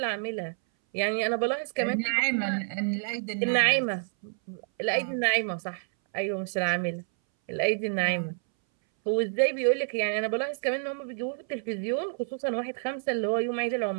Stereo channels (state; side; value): silent; left; 59 dB below the other